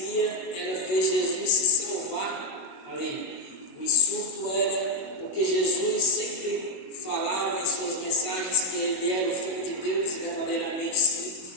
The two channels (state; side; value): late; right; 21 ms